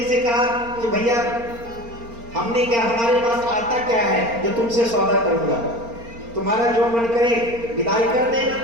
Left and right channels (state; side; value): late; left; 4.3 ms